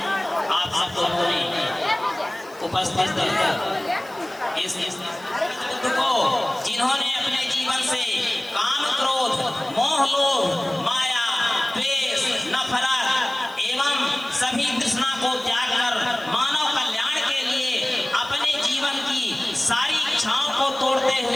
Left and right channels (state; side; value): noise; left; hiss, 25 dB below the sound